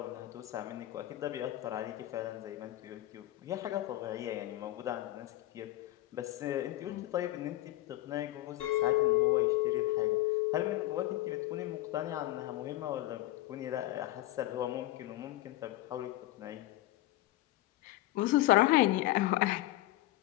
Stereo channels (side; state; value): right; quieter; 16.5 dB